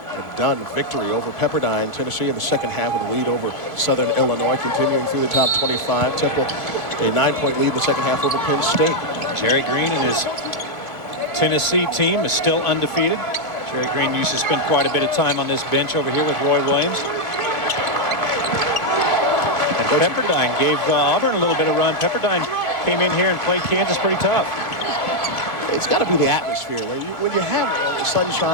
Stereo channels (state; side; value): late; right; 2.0 ms